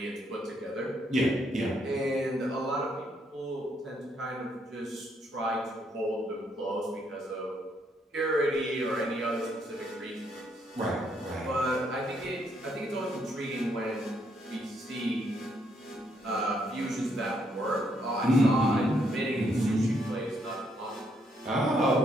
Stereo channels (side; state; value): both; normal; correlation 0.73